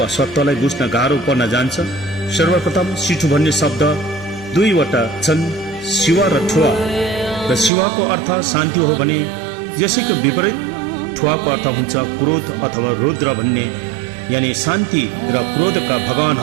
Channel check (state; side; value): drops out; left; at 7.7 s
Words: सत्यलाई बुझ्न गाह्रो पर्न जान्छ। सर्वप्रथम सिठो भन्ने शब्द दुईवटा छन्, शिवा र ठुवा। र शिवाको अर्थ शान्ति हो भने यसैको विपरीत ठुवाको अर्थ हुन्छ क्रोध अथवा रुद्र भन्ने, यानी शान्ति र क्रोधका